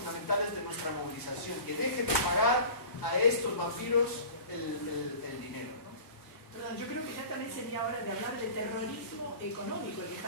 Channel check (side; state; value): right; late; 1.0 ms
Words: de nuestra movilización, que dejen de pagar a estos vampiros el dinero, ¿no? Perdón, yo creo que ya también sería hora de hablar de terrorismo económico que